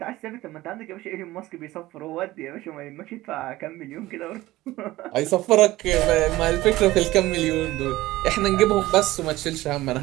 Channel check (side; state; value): left; quieter; 17.5 dB